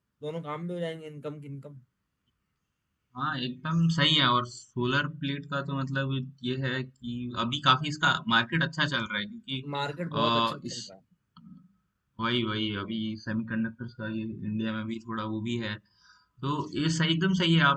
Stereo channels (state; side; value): identical; both; correlation 1.00